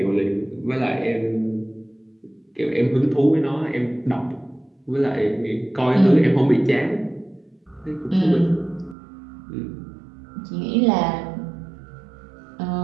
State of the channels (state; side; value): drops out; left; at 9.0 s